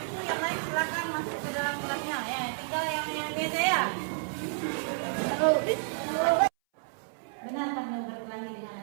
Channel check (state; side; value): silent; left; 57 dB below the other